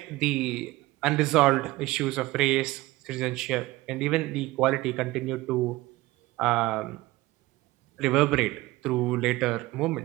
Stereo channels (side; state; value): left; quieter; 19.2 dB